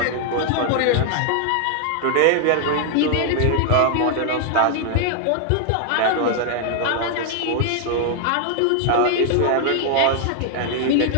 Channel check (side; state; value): both; different; correlation 0.00